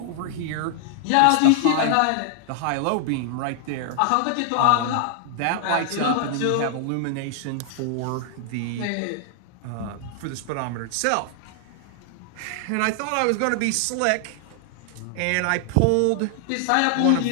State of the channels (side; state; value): both; different; correlation 0.00